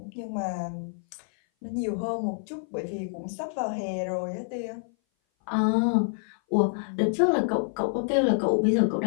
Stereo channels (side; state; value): right; silent; 58 dB below the other